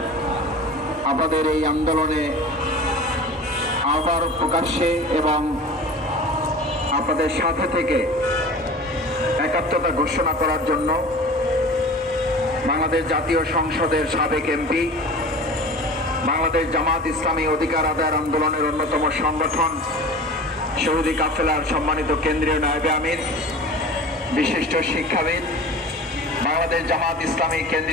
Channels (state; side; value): normal; both; correlation 0.37